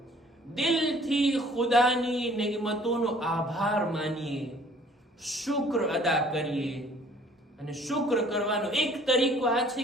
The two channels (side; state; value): both; normal; correlation 0.56